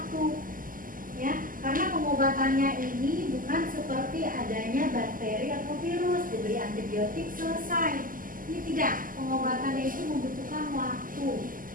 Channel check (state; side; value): late; left; 0.41 ms